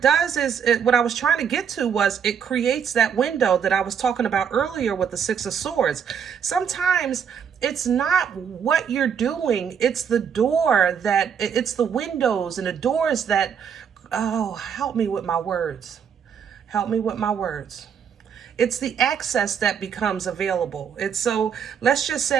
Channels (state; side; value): quieter; left; 7.5 dB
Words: does is, what I was trying to get to was it creates that window that I was talking about earlier with the 6 of Swords. Sometimes it's not what you're doing. It's the door it's the windows and the doors that, oh, help me with my words. Help me with my words. It's the access that becomes available. It's so, let's just